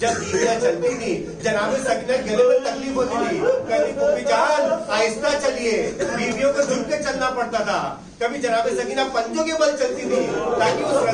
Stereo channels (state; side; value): identical; both; correlation 1.00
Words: बीवियां चलती थी, जनाब सकीना के गले में तकलीफ होती थी, कभी फूफी जान आहिस्ता चलिए, बीवियों को झुक के चलना पड़ता था। कभी जनाब सकीना पंजों के बल चलती थी ताकि उस